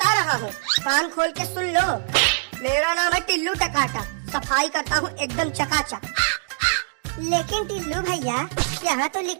रहा हूँ, कान खोल के सुन लो। मेरा नाम है टिल्लू टकाटा। सफाई करता हूँ एकदम चकाचक। लेकिन टिल्लू भैया, यहाँ तो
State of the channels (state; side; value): silent; left; digital silence